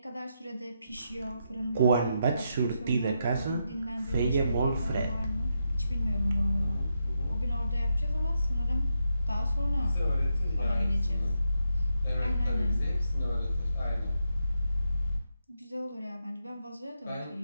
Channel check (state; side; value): inverted; both; correlation -0.83